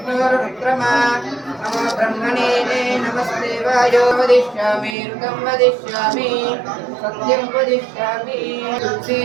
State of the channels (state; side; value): drops out; left; at 5.0 s